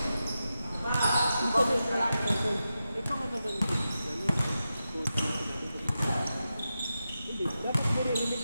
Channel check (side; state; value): both; inverted; correlation -0.90